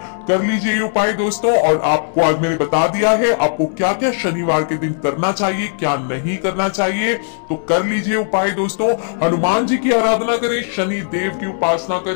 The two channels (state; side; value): silent; right; 68 dB below the other